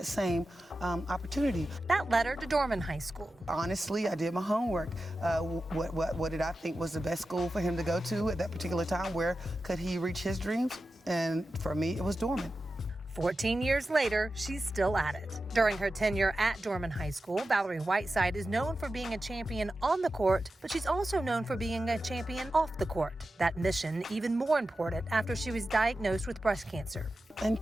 same opportunity. That led her to Dorman High School. Honestly, I did my homework. What did I think was the best school for him to go to at that particular time? Where could he reach his dreams? And for me, it was Dorman. 14 years later, she's still at it. During her tenure at Dorman High School, Valorie Whiteside is known for being a champion on the court, but she's also known for being a champion off the court. That mission even more important after she was diagnosed with breast cancer.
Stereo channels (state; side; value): normal; both; correlation 0.92